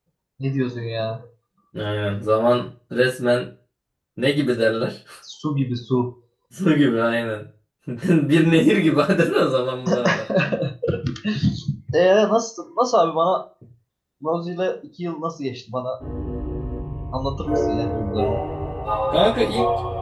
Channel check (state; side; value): identical; both; correlation 1.00